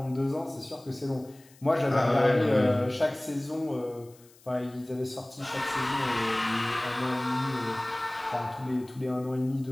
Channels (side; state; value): left; noise; hiss, 27 dB below the sound